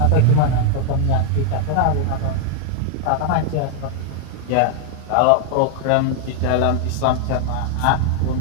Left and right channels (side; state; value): both; different; correlation 0.00